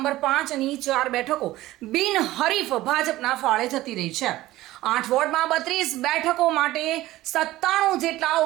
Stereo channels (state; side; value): quieter; left; 16.5 dB